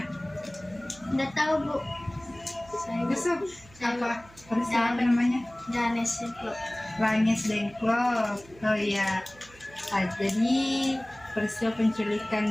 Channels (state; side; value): noise; right; hum, 24 dB below the sound